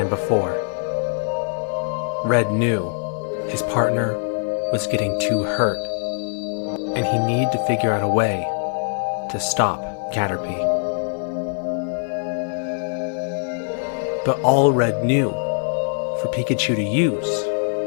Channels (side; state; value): right; silent; 64 dB below the other